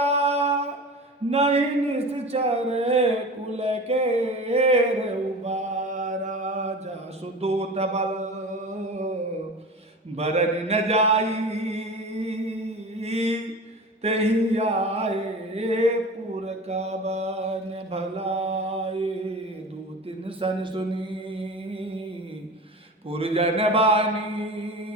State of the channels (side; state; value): both; normal; correlation 0.34